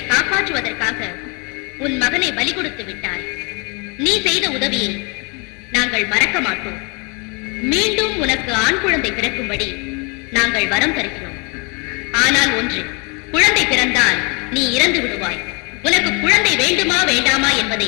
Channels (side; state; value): right; quieter; 31.7 dB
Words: காப்பாற்றுவதற்காக உன் மகனை பலி கொடுத்து விட்டாய். நீ செய்த உதவியை நாங்கள் மறக்க மாட்டோம். மீண்டும் உனக்கு ஆண் குழந்தை பிறக்கும்படி நாங்கள் வரம் தருகிறோம். ஆனால் ஒன்று, குழந்தை பிறந்தால் நீ இறந்து விடுவாய். உனக்கு குழந்தை வேண்டுமா வேண்டாமா என்பதை